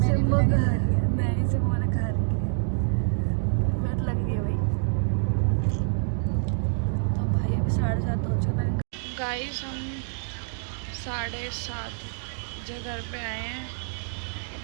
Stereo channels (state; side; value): silent; left; digital silence